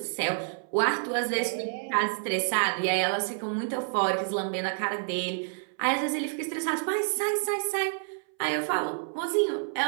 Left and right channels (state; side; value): silent; left; 59 dB below the other